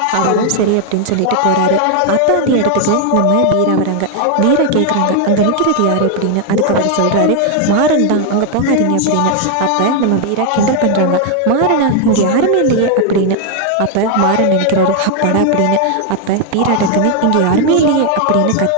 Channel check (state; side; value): different; both; correlation 0.00